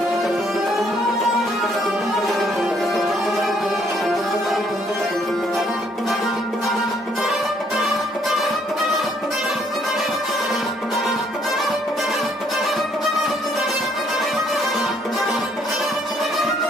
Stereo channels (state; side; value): normal; both; correlation 0.67